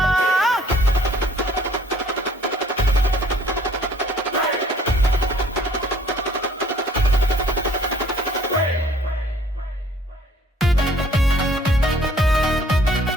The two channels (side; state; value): both; normal; correlation 0.58